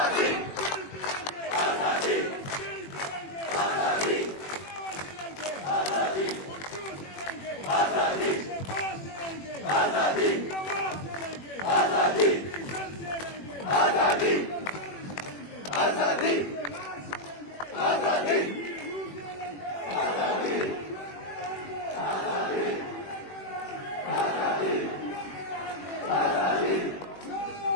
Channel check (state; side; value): late; right; 21 ms